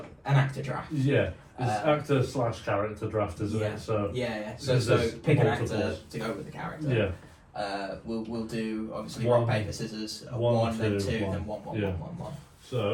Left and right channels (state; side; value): identical; both; correlation 1.00